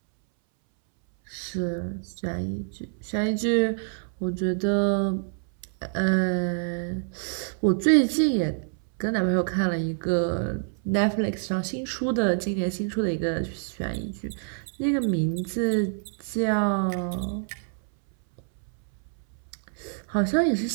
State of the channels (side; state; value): left; silent; 60 dB below the other